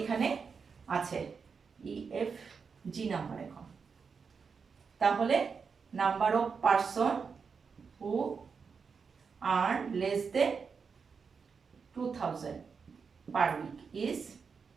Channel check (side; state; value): left; quieter; 5.6 dB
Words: এখানে আছে। EF G number. এখন তাহলে number of person who earn less than 2000 per week is